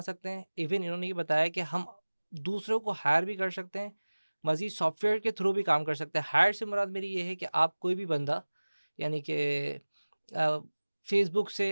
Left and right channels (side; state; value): both; inverted; correlation -1.00